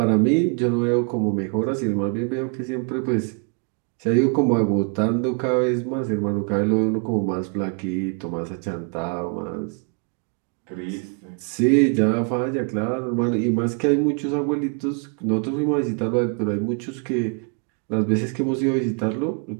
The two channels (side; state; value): left; quieter; 39.8 dB